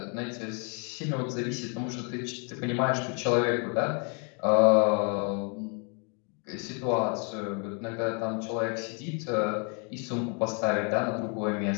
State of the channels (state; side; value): quieter; right; 37.5 dB